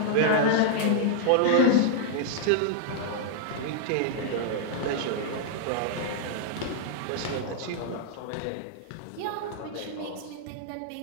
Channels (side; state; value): both; different; correlation -0.01